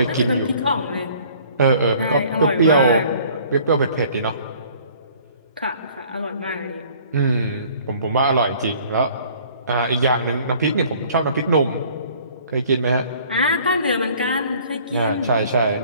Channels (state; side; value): inverted; both; correlation -0.54